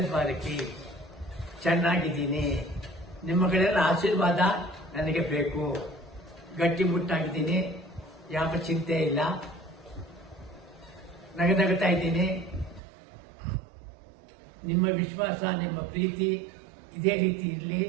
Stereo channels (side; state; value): left; drops out; at 12.8 s